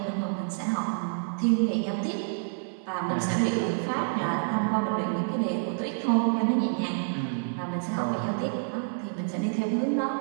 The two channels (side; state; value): left; silent; 57 dB below the other